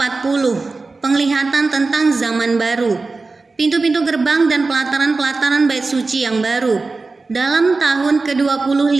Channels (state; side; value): quieter; left; 3.8 dB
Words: penglihatan tentang zaman baru, pintu-pintu gerbang dan pelataran-pelataran bait suci yang baru. Dalam tahun